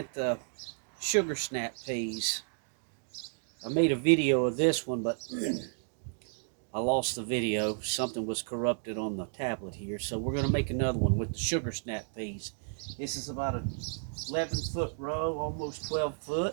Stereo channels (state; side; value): silent; left; digital silence